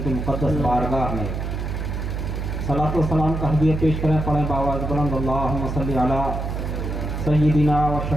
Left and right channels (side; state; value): right; noise; hum, 3 dB below the sound